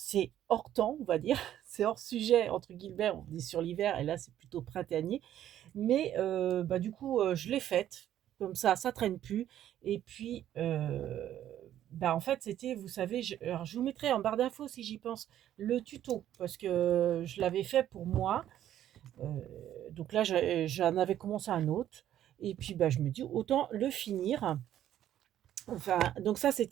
hors temps on va dire, c'est hors sujet entre guillemets, on est sur l'hiver et là c'est plutôt printanier. Mais bah, du coup, je l'ai faite, comme ça traîne plus et puis, bah, en fait, c'était vous savez, je vous mettrai en barre d'infos si j'y pense, le tuto parce que je l'avais fait pour moi, donc là, j'en avais commencé un autre et puis, bah, je me dis: «Autant le finir». Enfin, donc ça,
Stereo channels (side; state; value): left; quieter; 11.6 dB